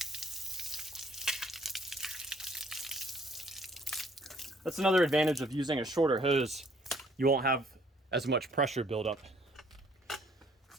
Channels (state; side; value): normal; both; correlation 0.62